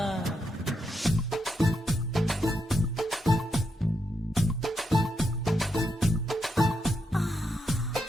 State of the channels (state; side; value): normal; both; correlation 0.82